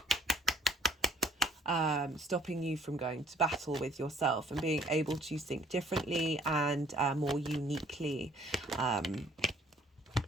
stopping you from going to battle with yourself and being able to think differently and more uniquely.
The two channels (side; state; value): both; normal; correlation 0.59